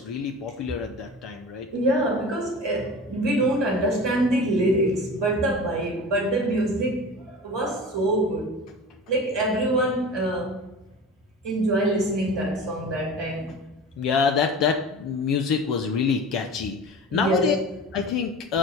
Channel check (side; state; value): both; normal; correlation 0.35